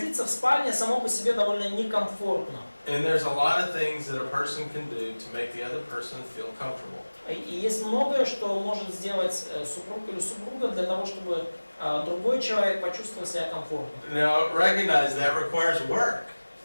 в спальне само по себе довольно некомфортно. And there's a lot of things that a person can do to make the other person feel comfortable. И есть многое, что может сделать супруг или супруга для того, чтобы другой человек почувствовал себя комфортно. Now, recognize that requires work.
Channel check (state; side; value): inverted; both; correlation -1.00